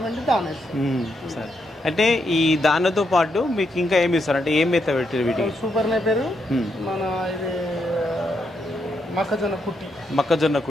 పిండి దాన ఇస్తాం. సరే, అంటే ఈ దానితో పాటు మీకు ఇంకా ఏమి ఇస్తారు, అంటే ఏం మేత పెట్టారు వీటికి? సూపర్ నేపేరు, మన ఇది మొక్కజొన్న కుట్టి. మొక్కజొన్న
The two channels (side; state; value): both; normal; correlation 0.80